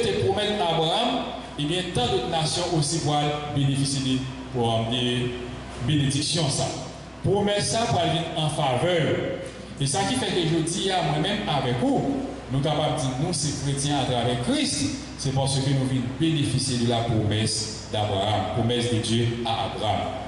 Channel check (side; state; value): both; identical; correlation 1.00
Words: promet à Abraham, et bien, tant d'autres nations aussi vont bénéficier pour des bénédictions. Ça. Promesse ça pour aller en faveur. Et ça qui fait que je dis à moi-même avec vous, nous sommes capables de dire nous, ces chrétiens à travers Christ, c'est parce que nous venons bénéficier de la promesse d'Abraham, promesse de Dieu à Abraham.